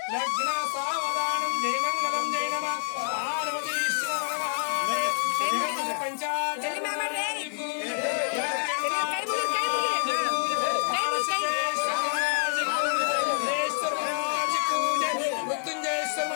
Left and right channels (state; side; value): silent; right; 60 dB below the other